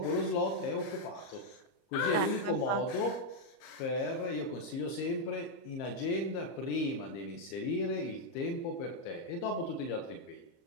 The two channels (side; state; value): right; late; 30 ms